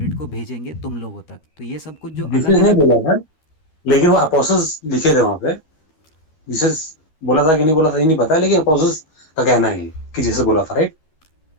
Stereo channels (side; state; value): right; late; 13 ms